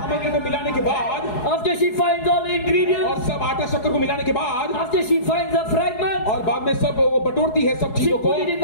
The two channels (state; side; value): late; right; 4.7 ms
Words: सामग्री को मिलाने के बाद, after she finds all the ingredients, और सब आटा शक्कर को मिलाने के बाद, after she finds the fragments, और बाद में सब वो बटोरती है सब she चीजों को, put it in